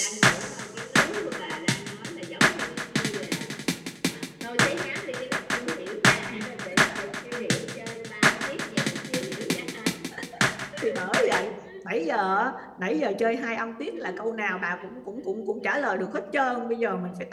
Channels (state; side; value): identical; both; correlation 1.00